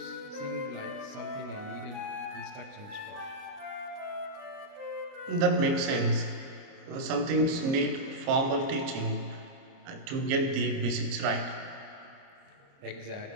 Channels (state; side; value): late; left; 30 ms